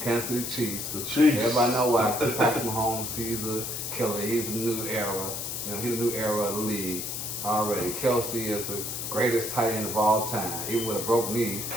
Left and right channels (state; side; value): noise; left; hiss, 4 dB below the sound